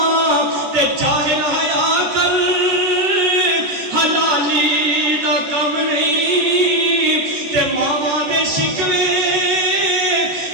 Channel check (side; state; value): left; late; 14 ms